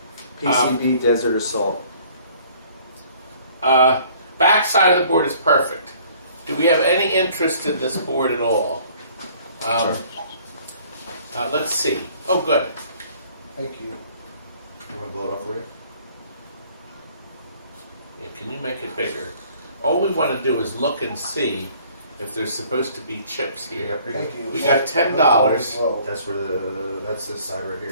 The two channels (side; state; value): both; inverted; correlation -0.56